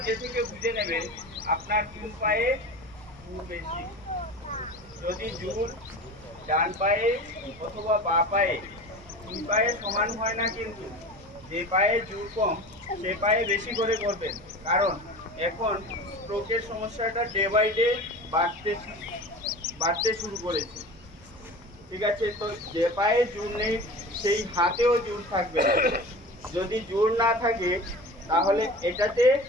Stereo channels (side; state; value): both; normal; correlation 0.34